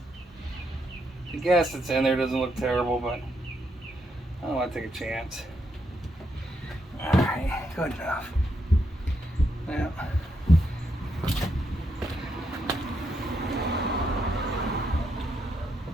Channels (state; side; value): normal; both; correlation 0.79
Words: The gas that's in there doesn't look terrible, but I don't want to take a chance. Alright, good enough. Now,